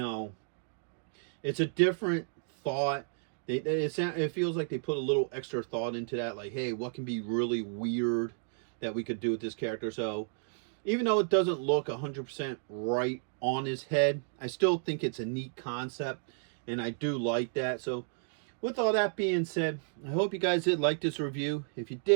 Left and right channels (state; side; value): silent; left; digital silence